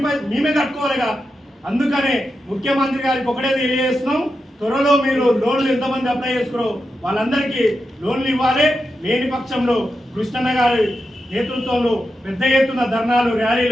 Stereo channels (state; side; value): normal; both; correlation 0.88